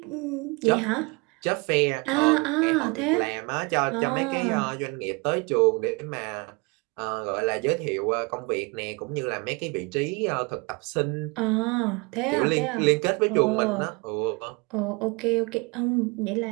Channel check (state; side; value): quieter; left; 28.9 dB